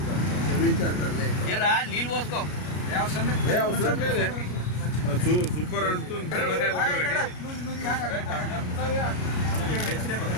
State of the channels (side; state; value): right; late; 33 ms